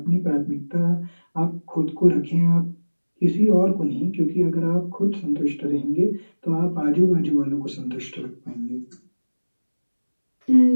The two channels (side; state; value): both; inverted; correlation -1.00